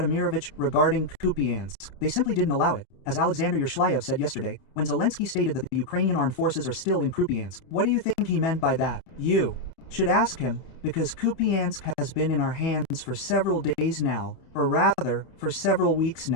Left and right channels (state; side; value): late; right; 29 ms